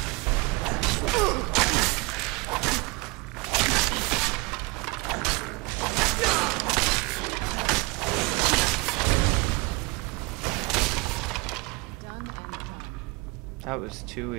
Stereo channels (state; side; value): quieter; left; 26.3 dB